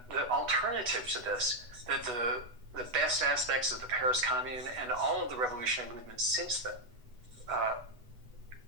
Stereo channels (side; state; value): left; late; 8.1 ms